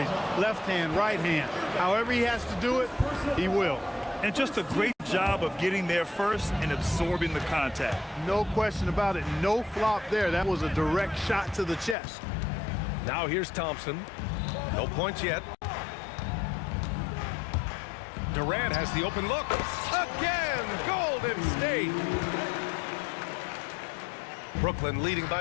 left hand, right hand. However he has to do it, he will. And just a great job of getting there first and absorbing the contact. No question about it. No flop there. That was a direct shot to the chest. Now here's Thompson. No points yet. Durant has the open look. Again, Golden State. Brooklyn leading by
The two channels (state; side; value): drops out; right; at 12.0 s